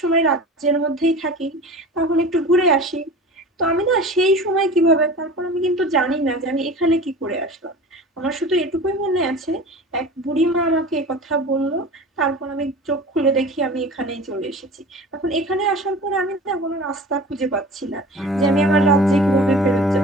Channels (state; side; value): normal; both; correlation 0.37